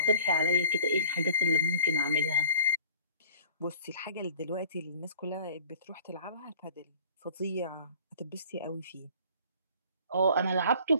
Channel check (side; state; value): both; inverted; correlation -0.47